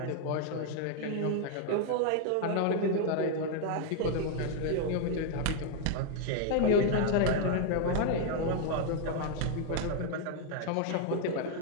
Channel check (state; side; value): different; both; correlation 0.00